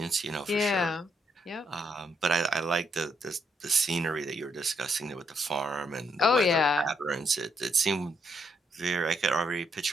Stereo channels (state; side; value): normal; both; correlation 0.76